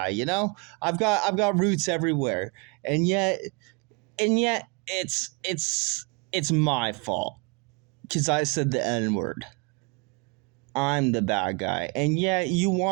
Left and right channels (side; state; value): left; quieter; 30.6 dB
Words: you know? I've got roots everywhere. And yet it's my fault. 'Cause I said the N-word. I'm the bad guy. And yet you